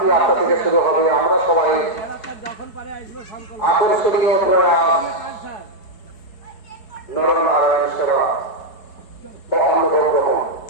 8টা থেকে শুরু হবে। আমরা সবাই যখন পারে আসবে সংকল্প আকর্ষণীয় প্রয়াস কাজ স্যার নরনারায়ণ সেবা বা অন্নভোগ গ্রহণ।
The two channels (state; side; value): late; right; 4.7 ms